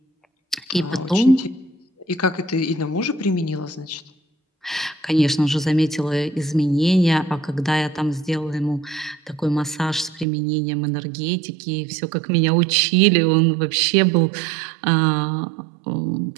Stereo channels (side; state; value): left; drops out; at 10.2 s